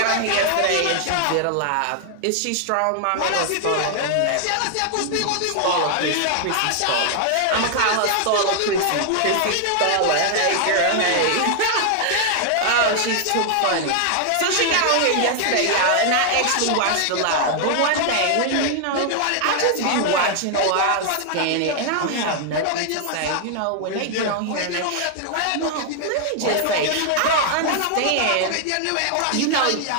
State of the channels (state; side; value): different; both; correlation 0.00